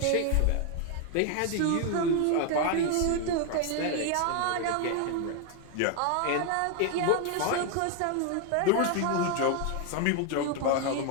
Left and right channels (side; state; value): both; different; correlation 0.01